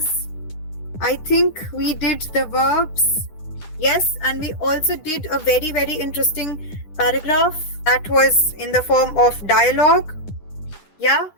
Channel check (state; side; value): late; right; 10 ms